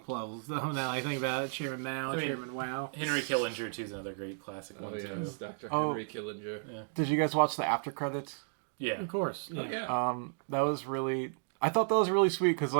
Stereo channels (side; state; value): left; silent; digital silence